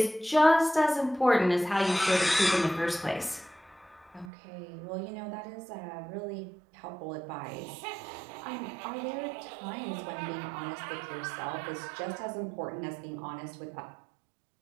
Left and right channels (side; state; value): left; drops out; at 4.3 s